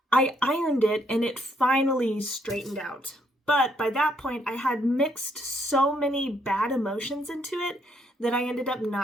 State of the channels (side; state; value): both; normal; correlation 0.71